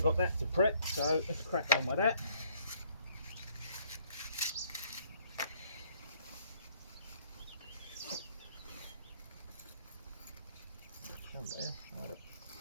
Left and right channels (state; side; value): inverted; both; correlation -0.65